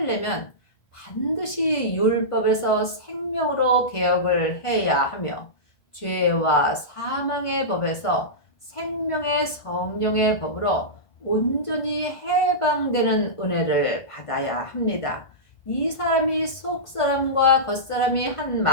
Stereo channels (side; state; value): right; late; 1.5 ms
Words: 반드시 율법에서 생명으로 개혁을 해야 하며 죄와 사망의 법에서 생명의 성령의 법으로 온전히 해방되는 은혜를 받아야 합니다. 이 사람이 속사람과 겉사람이 한